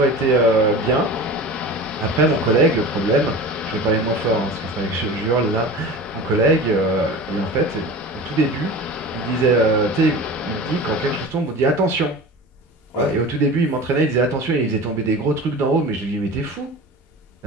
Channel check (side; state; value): both; normal; correlation 0.35